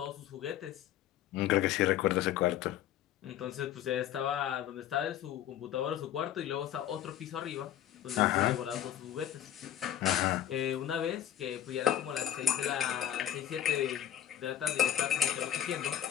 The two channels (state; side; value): quieter; right; 11.2 dB